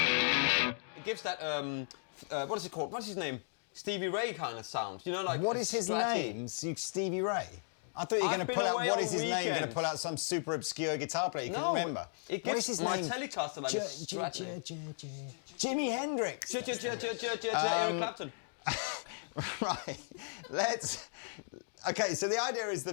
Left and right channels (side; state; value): right; silent; digital silence